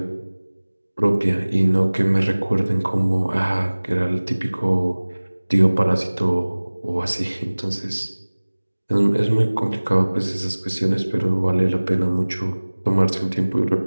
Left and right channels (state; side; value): inverted; both; correlation -1.00